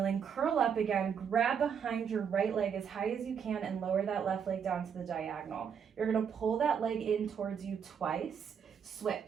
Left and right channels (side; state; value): left; quieter; 7.3 dB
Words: curl up again, grab behind your right leg as high as you can and lower that left leg down to the diagonal. You're gonna pull that leg in towards you twice,